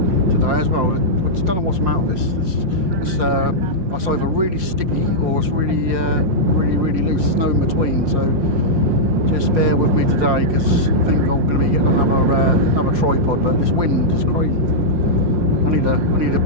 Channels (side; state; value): left; late; 5.6 ms